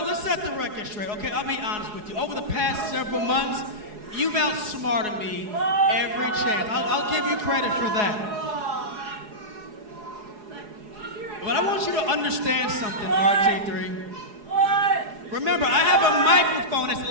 Let's set the record straight, okay? I'll be honest with you. Over the past several months, you've outsmarted me every chance. I'll give you credit for that. But I want you to understand something, RT3. Remember, I have a microphone that's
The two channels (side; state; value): left; late; 4.8 ms